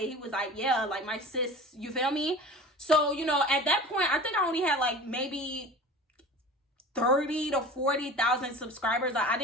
was like, yeah, like, my sis, you feel me? So, you know, at that point, I think I only had like maybe 30 to 40,000 subscribers. Like, I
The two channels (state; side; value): normal; both; correlation 0.37